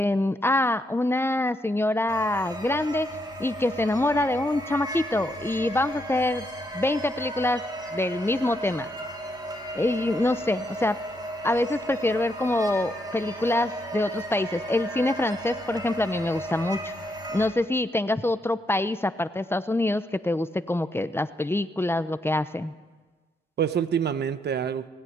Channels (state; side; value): normal; both; correlation 0.77